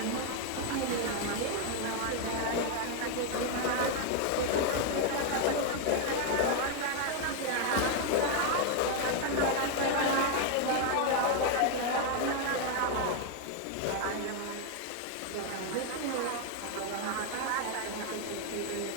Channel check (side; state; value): both; different; correlation 0.01